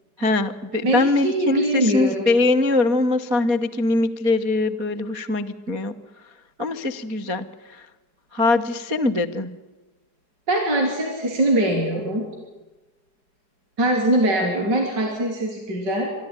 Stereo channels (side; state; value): left; late; 4.8 ms